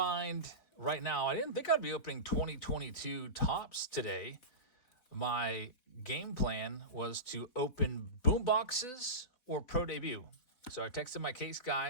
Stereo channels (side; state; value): right; late; 4.1 ms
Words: right now. I didn't think I'd be opening 2022 tops today. My game plan was to open boom boxes or pro debut. So I texted my case